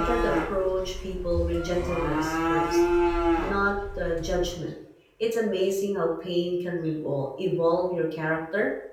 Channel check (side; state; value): both; identical; correlation 1.00